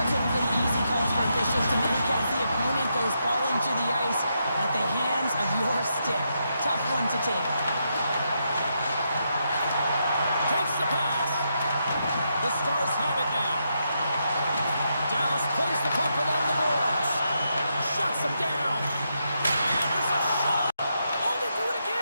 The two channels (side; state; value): both; inverted; correlation -0.82